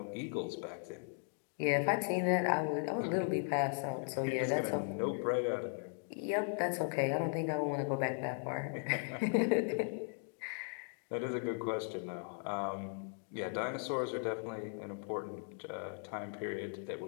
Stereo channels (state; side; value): silent; right; 53 dB below the other